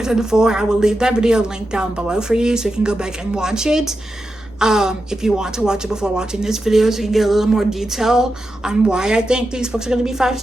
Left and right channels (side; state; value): both; normal; correlation 0.89